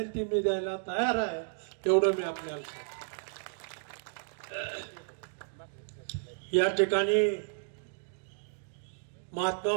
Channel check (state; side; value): silent; left; digital silence